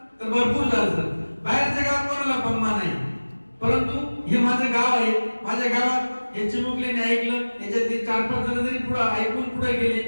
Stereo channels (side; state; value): both; inverted; correlation -1.00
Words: तर भरपूर झालं सर. बाहेरच्या गावात कोणाला पम्मा नाही, परंतु हे माझं गाव आहे. माझ्या गावात हे चिमुकल्याने ऐकलं, याच्यातले 4-5 जण जरी पुढे ऐकून पुढे गेले